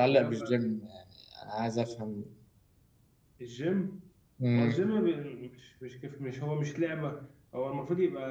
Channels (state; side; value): identical; both; correlation 1.00